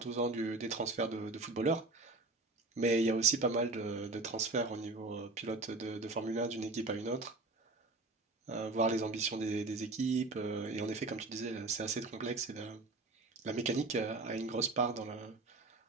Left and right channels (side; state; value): left; quieter; 3.3 dB